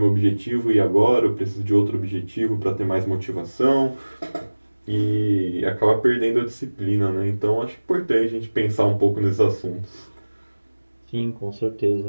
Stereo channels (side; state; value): both; inverted; correlation -1.00